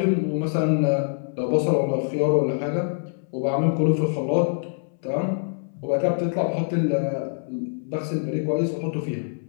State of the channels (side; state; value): right; silent; 62 dB below the other